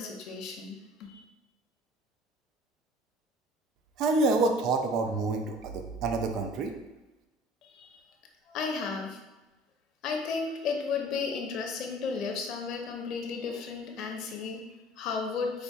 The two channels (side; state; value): both; normal; correlation 0.47